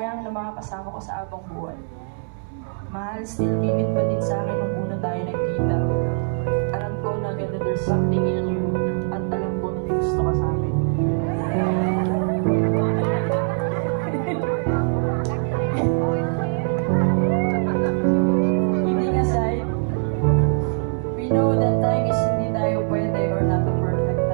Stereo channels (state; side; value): silent; left; 63 dB below the other